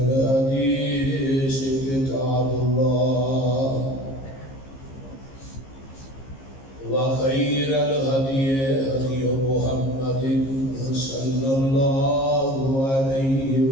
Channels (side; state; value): right; late; 15 ms